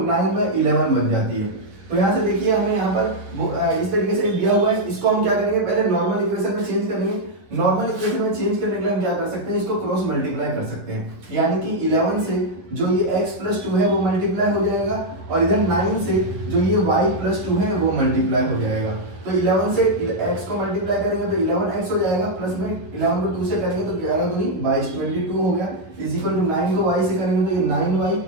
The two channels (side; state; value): left; late; 10 ms